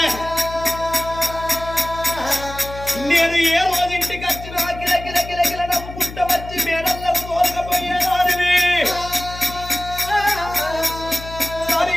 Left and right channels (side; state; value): left; noise; hum, 12 dB below the sound